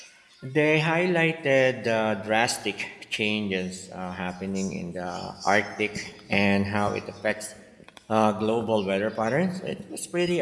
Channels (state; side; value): identical; both; correlation 1.00